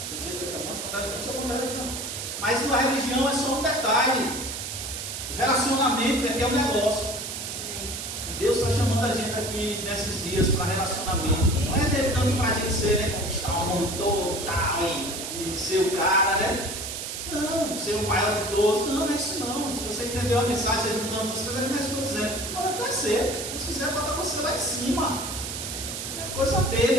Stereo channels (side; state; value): right; noise; hiss, 6 dB below the sound